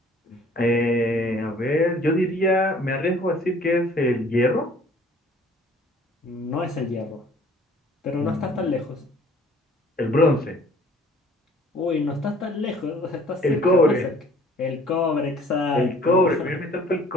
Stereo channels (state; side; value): normal; both; correlation 0.54